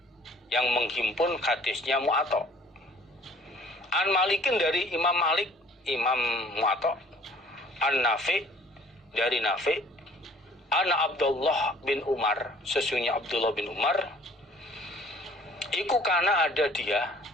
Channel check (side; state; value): both; normal; correlation 0.54